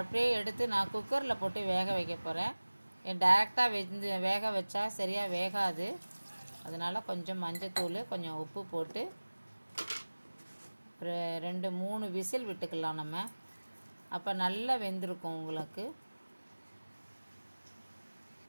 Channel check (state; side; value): inverted; both; correlation -1.00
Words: எடுத்து நான் குக்கரில் போட்டு வேக வைக்க போகிறேன். டைரெக்டாக வேக வச்சா சரியாக வேகாது. அதனால் கொஞ்சம் மஞ்சத்தூள், கொஞ்சம் உப்பு போட்டு 2-3 விசில் விட்டுக்கலாம் நம்ம. அப்போ நல்லா வெந்திருக்கும் உங்களுக்கு.